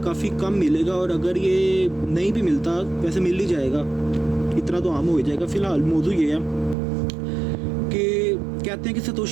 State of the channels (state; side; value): drops out; left; at 6.8 s